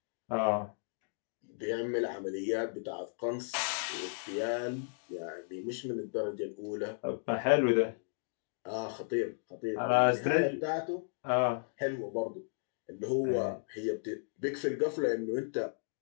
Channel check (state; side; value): silent; right; digital silence